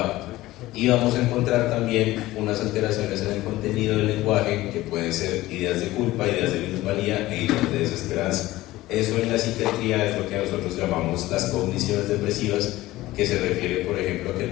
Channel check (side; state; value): right; quieter; 17.2 dB